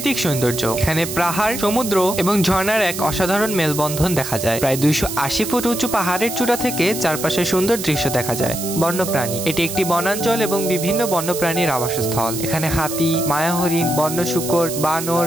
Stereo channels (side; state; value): right; noise; hiss, 7 dB below the sound